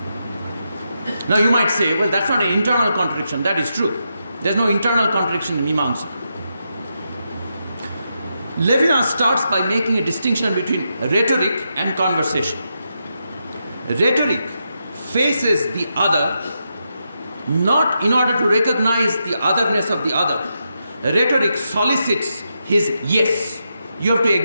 Now you might say, well, that's not an internal contradiction. That is true. There's no internal contradiction in Mimamsa. Levinas starts by making a distinction between rhetoric and conversation. Rhetoric faces the other not in order to recognize the otherness of the other. Rhetoric solicits his yes. You have to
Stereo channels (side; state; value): both; inverted; correlation -0.84